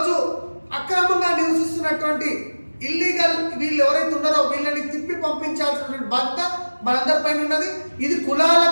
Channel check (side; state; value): both; inverted; correlation -1.00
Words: అక్రమంగా నివసిస్తున్నటువంటి ఇల్లీగల్ వీళ్ళు ఎవరైతే ఉన్నారో వీళ్ళని తిప్పి పంపించాల్సినటువంటి బాధ్యత మనందరిపైన ఉన్నది. ఇది